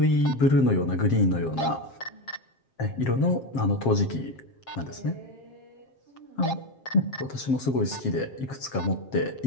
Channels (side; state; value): right; late; 7.5 ms